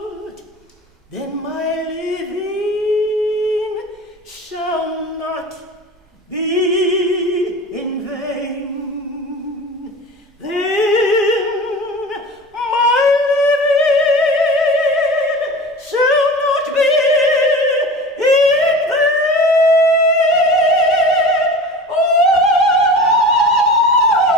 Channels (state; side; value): normal; both; correlation 0.35